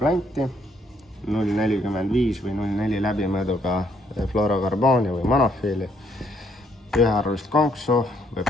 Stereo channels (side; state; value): both; normal; correlation 0.70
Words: 0,45 või 0,4 läbimõõduga fluorokarbooni või monofiili, ühearvulist konksu, võib